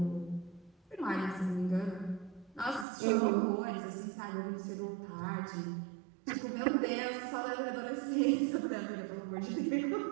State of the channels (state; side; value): drops out; left; at 2.9 s